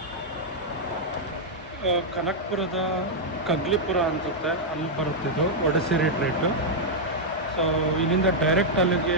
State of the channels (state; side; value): normal; both; correlation -0.04